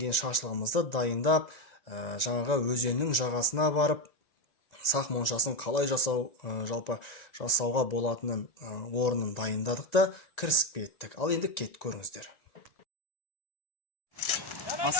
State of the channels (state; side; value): late; right; 1.9 ms